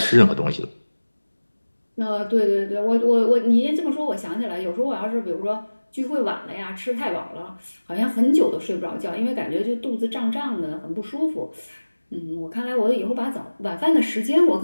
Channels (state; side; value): inverted; both; correlation -1.00